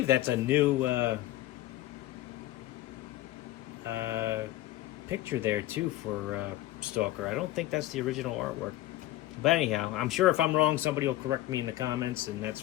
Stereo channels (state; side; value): quieter; right; 15.7 dB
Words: that's a new picture there too for Stalker. I don't think that's the original artwork. But anyhow, I'm sure if I'm wrong, somebody will correct me in the comments, and that's